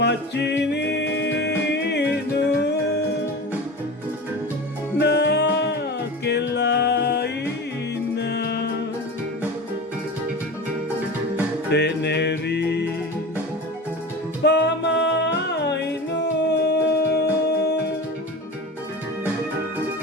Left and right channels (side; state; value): both; normal; correlation 0.32